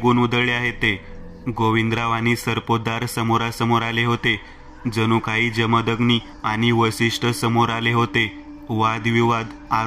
उधळले आहेत ते. गोविंदराव आणि सरपोतदार समोरासमोर आले होते. जणू काही जमदग्नी आणि वसिष्ठ समोर आले होते. वादविवाद,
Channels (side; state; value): both; identical; correlation 1.00